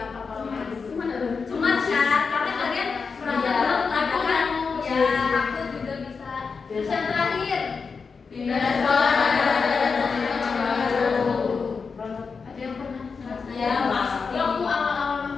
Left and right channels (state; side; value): quieter; right; 5.1 dB